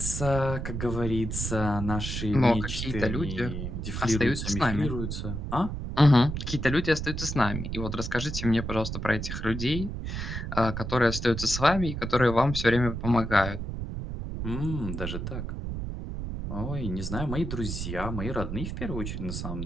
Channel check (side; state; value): right; noise; rumble, 5 dB below the sound